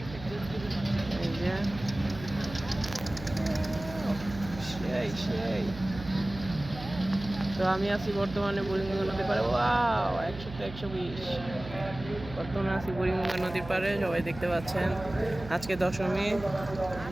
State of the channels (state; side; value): noise; right; hum, 13 dB below the sound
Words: এই যে সেই তো আমি আছি বর্তমানে বুড়িগঙ্গা নদীর পাড়ে। 100-তে 120, বর্তমানে আছি বুড়িগঙ্গা নদীর পাড়ে। সবাই দেখতে পাচ্ছেন, আজকে দশমী,